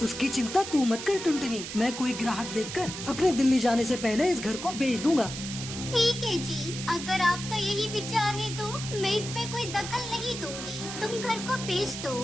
उसकी चिंता तू मत कर टुनटुनी, मैं कोई ग्राहक देखकर अपने दिल्ली जाने से पहले इस घर को बेच दूंगा। ठीक है जी, अगर आपका यही विचार है तो मैं इसमें कोई दखल नहीं दूंगी, तुम घर को बेच दो।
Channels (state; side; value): noise; right; hiss, 8 dB below the sound